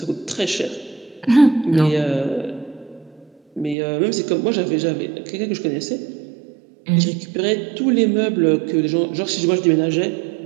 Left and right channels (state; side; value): drops out; left; at 3.8 s